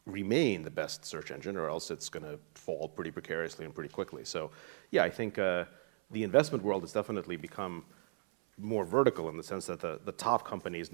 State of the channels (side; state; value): left; silent; 53 dB below the other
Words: remain the best search engine, or else it's going to fall pretty precariously and pretty quickly. So, yeah, I think the investment world has definitely become more vertical in the sense that the top company is